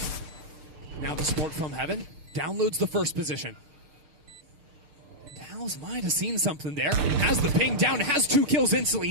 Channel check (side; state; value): left; late; 6.8 ms